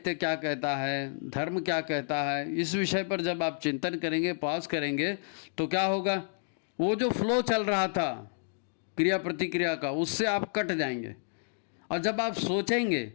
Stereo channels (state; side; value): silent; right; digital silence